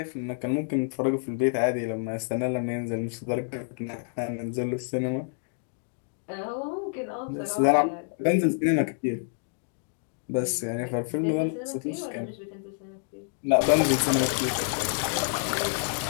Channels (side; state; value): right; silent; digital silence